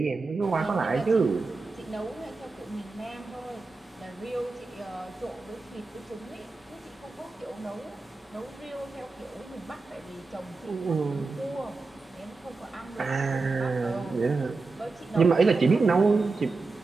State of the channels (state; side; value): quieter; left; 3.9 dB